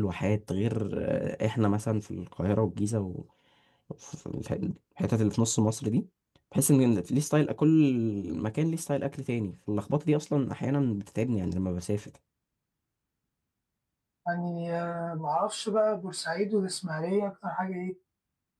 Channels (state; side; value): identical; both; correlation 1.00